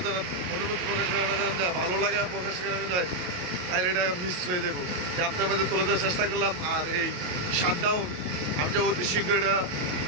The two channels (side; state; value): left; late; 28 ms